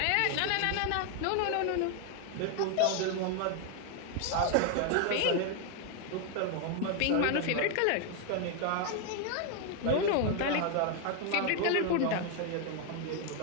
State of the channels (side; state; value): both; different; correlation 0.01